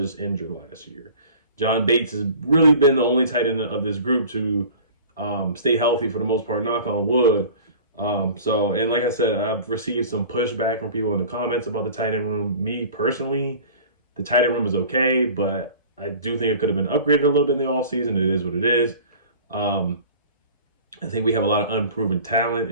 injured last year. John Bates has really been the only tight end of this group to stay healthy for the most part, knock on wood. And like I said, I've received some pushback from people in the comments about the tight end room. Me personally, the tight end room is okay, but I do think it could have been upgraded a little bit in the offseason. It is what it is. I think we have a lot of unproven talent,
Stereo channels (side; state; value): both; inverted; correlation -0.43